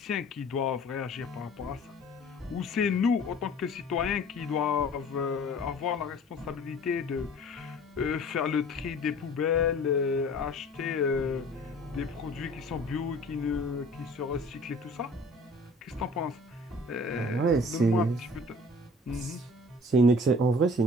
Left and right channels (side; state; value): both; normal; correlation 0.48